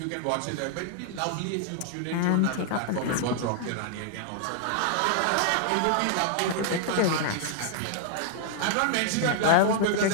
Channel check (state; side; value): different; both; correlation 0.00